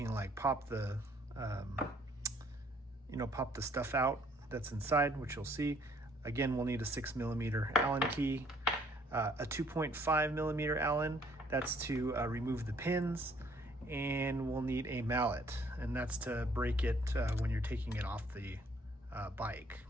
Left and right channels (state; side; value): normal; both; correlation 0.62